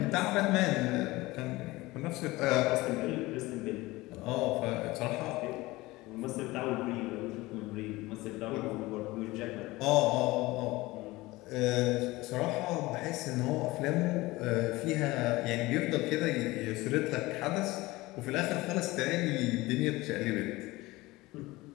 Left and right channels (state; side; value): quieter; right; 20.2 dB